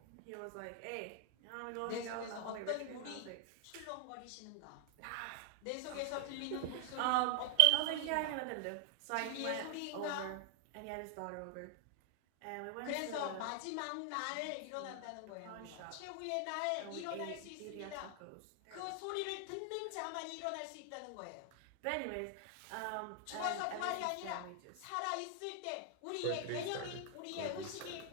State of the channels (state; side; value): different; both; correlation 0.00